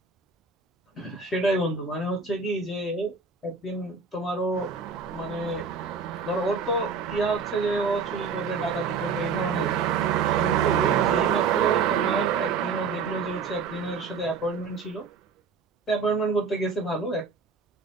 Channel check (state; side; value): quieter; left; 5.2 dB